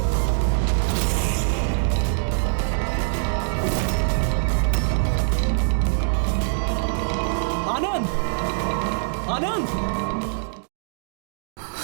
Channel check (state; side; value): silent; left; digital silence